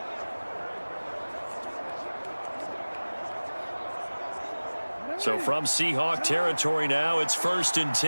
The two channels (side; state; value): both; inverted; correlation -1.00